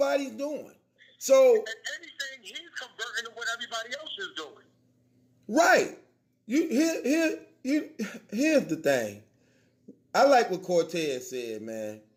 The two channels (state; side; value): identical; both; correlation 1.00